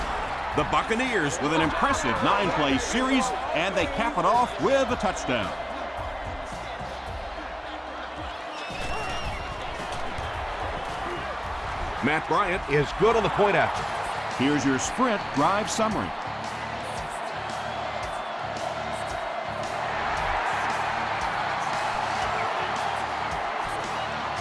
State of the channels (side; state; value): both; identical; correlation 1.00